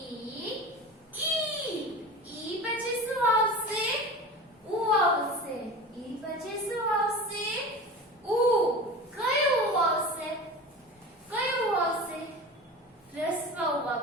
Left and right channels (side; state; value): both; normal; correlation 0.33